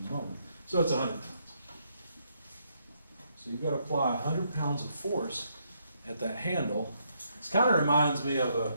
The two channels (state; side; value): inverted; both; correlation -0.74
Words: moment. So it's 100 pounds. So you've got to apply 100 pounds of force at that handle. This kind of reminds me of